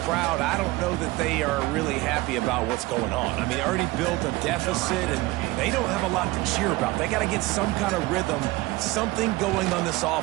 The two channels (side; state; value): left; quieter; 20.2 dB